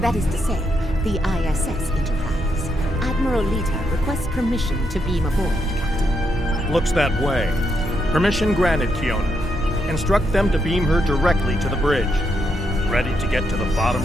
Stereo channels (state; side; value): normal; both; correlation 0.79